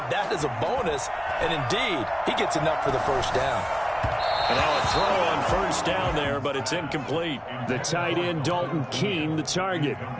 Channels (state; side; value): identical; both; correlation 1.00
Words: that as a bonus. And indeed, he gets enough for the first down. And now a throw on first down there, but it's incomplete. The tight end, Dalton Keene, the target,